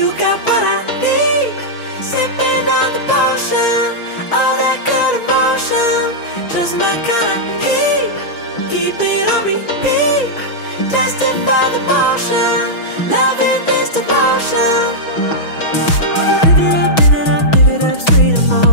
got what I need. Sipping on the potion, all that good emotion, just my kind of heat. Keep it on repeat, destined by the motion, loving this devotion. Live it up, sweet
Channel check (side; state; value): right; late; 6.1 ms